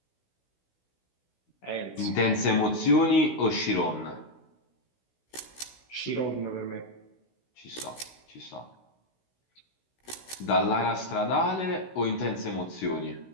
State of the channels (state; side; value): late; right; 16 ms